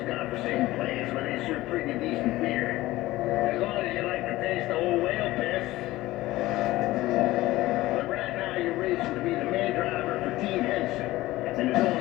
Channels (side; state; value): right; quieter; 17.6 dB